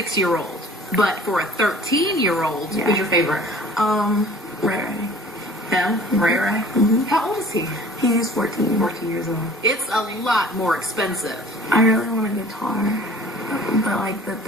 But for a 13-year-old, who's your favorite? Ray. Him? Ray Ray? Mm-hmm. How old is he? He's 14 years old. It's a lot more expensive. I really want a guitar, but the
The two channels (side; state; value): both; normal; correlation 0.48